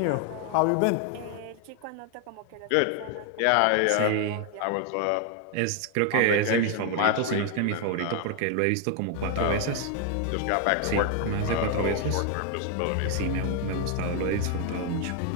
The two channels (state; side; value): different; both; correlation 0.00